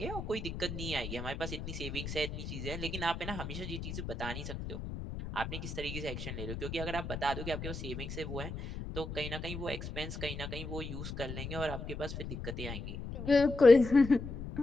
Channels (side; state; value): left; noise; rumble, 7 dB below the sound